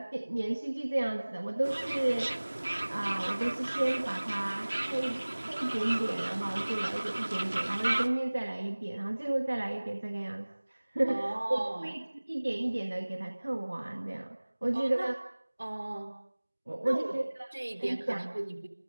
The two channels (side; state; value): both; inverted; correlation -1.00